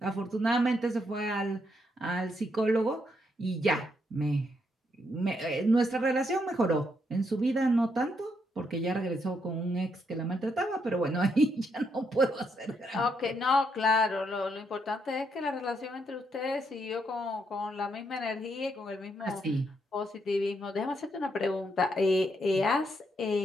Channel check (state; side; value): normal; both; correlation 0.77